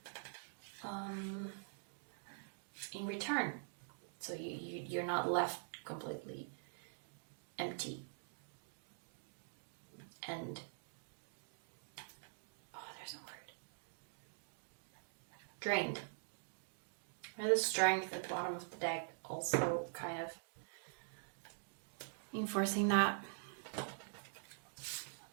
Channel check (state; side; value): silent; left; digital silence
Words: in return. So you're not left completely empty. And, there's a word. Drained. And the strength at the bottom of the deck also kind of enforcing that.